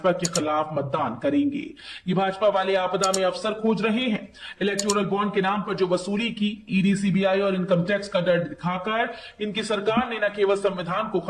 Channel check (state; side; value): identical; both; correlation 1.00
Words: के खिलाफ मतदान करेंगे। ये भाजपा वाले आपदा में अवसर खोज रहे हैं। इलेक्टोरल बॉन्ड के नाम पर जो वसूली की, ईडी, सीबीआई और इनकम टैक्स का डर दिखाकर इनकी सरकार ने न केवल संविधान को